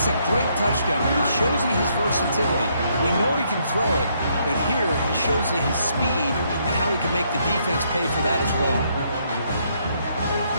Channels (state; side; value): inverted; both; correlation -0.72